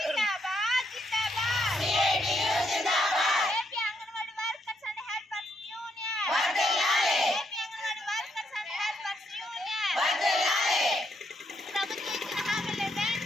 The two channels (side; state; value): both; normal; correlation 0.76